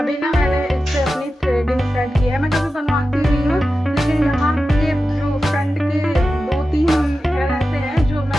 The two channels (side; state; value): both; normal; correlation 0.93